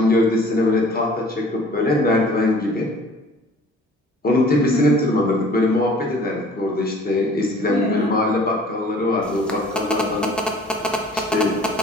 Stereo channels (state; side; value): normal; both; correlation 0.51